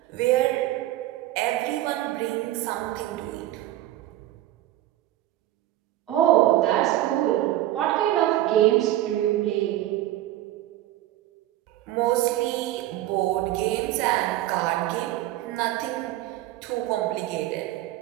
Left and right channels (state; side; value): quieter; left; 14.5 dB